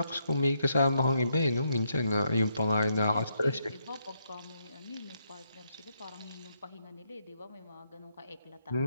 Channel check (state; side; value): inverted; both; correlation -0.78